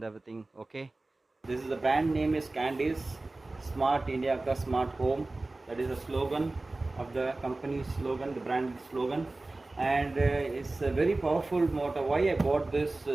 everything. Okay, this is the brand name is Candice Smart India Ka Smart Home. That is the slogan of the company slogan, the brand slogan, and it's a very powerful motor. Why I bought this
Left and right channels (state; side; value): quieter; left; 3.1 dB